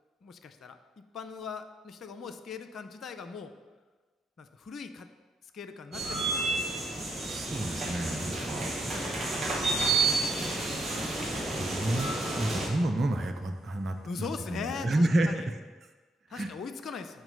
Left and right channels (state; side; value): normal; both; correlation 0.77